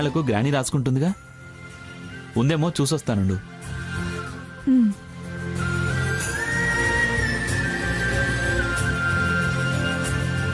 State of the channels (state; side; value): identical; both; correlation 1.00